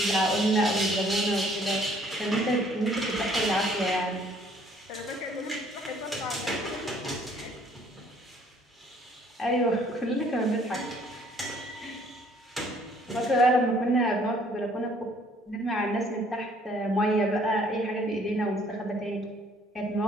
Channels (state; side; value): normal; both; correlation 0.60